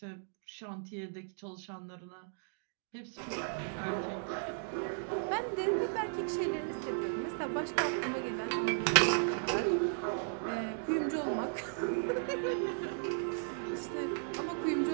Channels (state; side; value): silent; left; digital silence